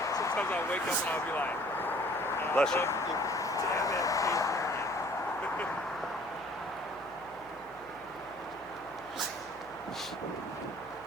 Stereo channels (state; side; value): noise; left; hum, 25 dB below the sound